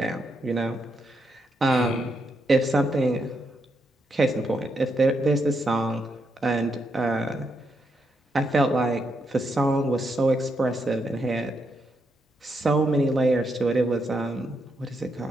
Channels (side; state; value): both; normal; correlation 0.80